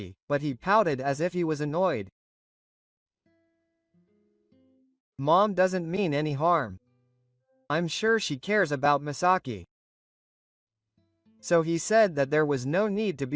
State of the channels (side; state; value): both; identical; correlation 1.00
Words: but he pouted as if he was annoyed. Mom doesn't mean any harm. I'm sure she cares about Misaki. So he said that there was no need to